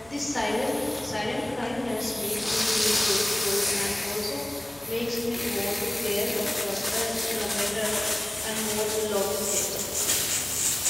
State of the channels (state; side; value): noise; left; hum, 26 dB below the sound